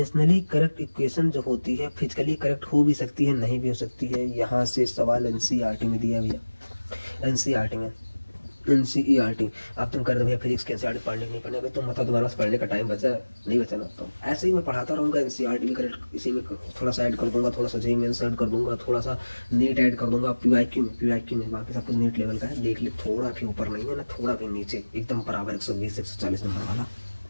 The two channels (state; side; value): inverted; both; correlation -1.00